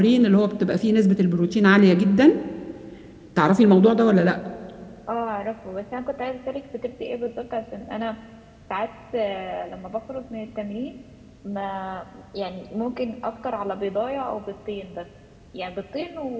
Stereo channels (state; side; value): identical; both; correlation 1.00